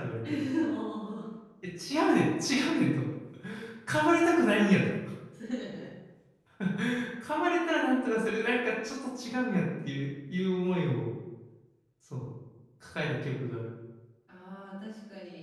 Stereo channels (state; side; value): identical; both; correlation 1.00